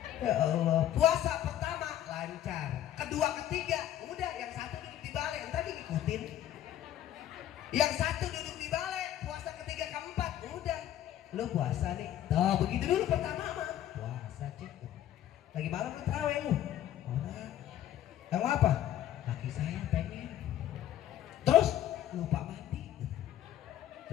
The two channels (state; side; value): quieter; right; 11.8 dB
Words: Ya Allah puasa pertama lancar kedua ketiga udah yang satu duduk di balai tadi ngikutin yang satu duduk di balai puasa ketiga keempat udah lu puasa nih tuh begitu dulu pertama mah puasa cek lagi malam lu terawih lu orang kamu apa? Laki saya pengen. Terus lupa mandi.